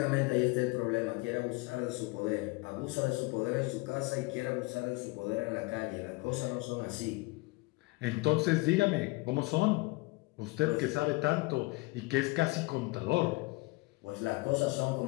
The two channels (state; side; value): quieter; right; 23.9 dB